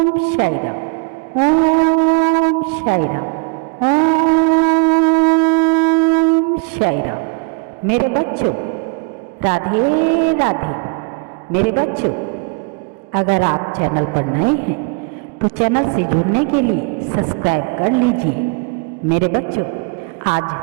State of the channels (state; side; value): quieter; left; 31.6 dB